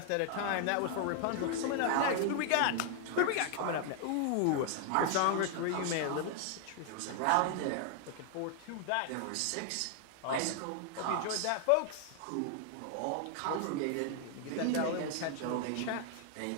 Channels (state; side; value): different; both; correlation 0.00